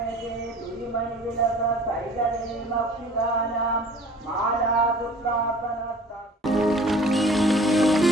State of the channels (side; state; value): both; normal; correlation 0.48